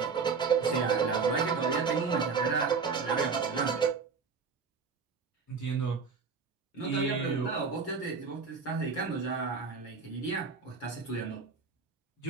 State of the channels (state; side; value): quieter; left; 5.2 dB